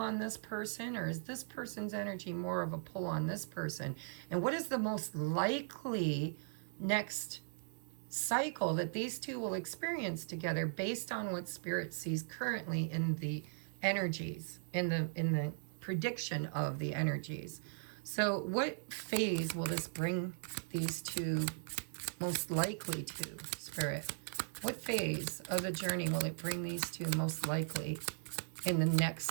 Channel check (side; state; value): left; silent; digital silence